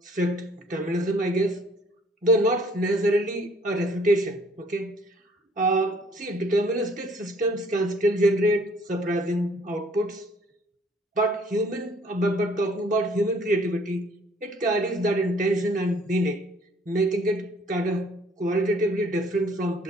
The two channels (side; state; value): both; normal; correlation 0.59